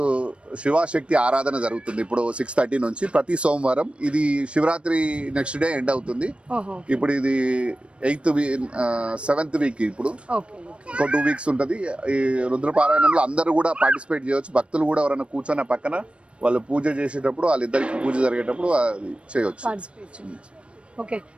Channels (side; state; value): left; late; 0.059 ms